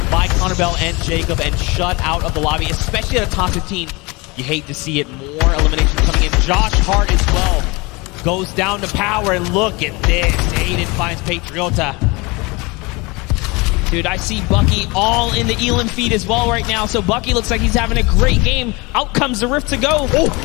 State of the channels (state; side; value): quieter; right; 25.8 dB